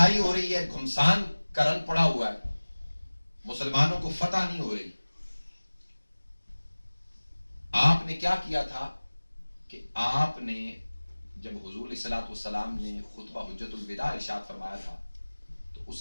ہو رہی ہے، گھمسان کا رن پڑا ہوا ہے، مسلمانوں کو فتح نہیں ہو رہی. آپ نے کیا کیا تھا کہ آپ نے جب حضور علیہ الصلوۃ والسلام نے خطبہ حجت الوداع ارشاد فرمایا تھا تو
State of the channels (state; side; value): inverted; both; correlation -1.00